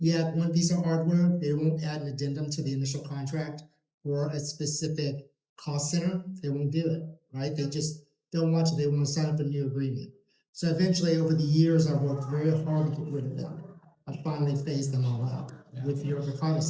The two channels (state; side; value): identical; both; correlation 1.00